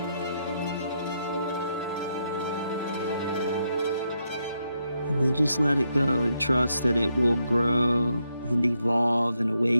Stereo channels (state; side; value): inverted; both; correlation -0.80